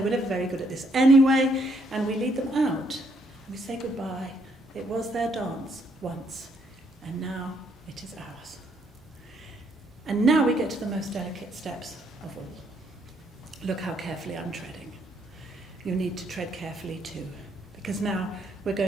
were never very good at this anyway. And we lead them out. We say goodbye. It was their dance once, and now it is ours. And now we get to the most delicate steps of all. Look how carefully I'm treading. You need to tread carefully too, because now we're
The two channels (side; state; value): both; normal; correlation 0.71